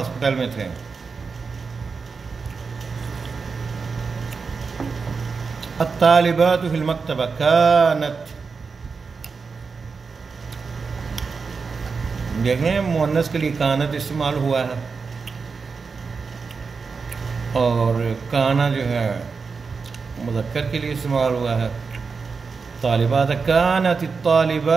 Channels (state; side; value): quieter; left; 5.0 dB